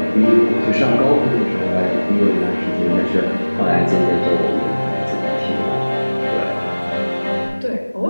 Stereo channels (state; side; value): inverted; both; correlation -1.00